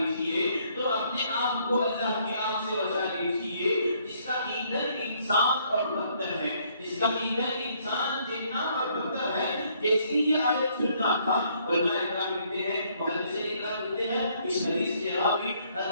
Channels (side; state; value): both; inverted; correlation -0.67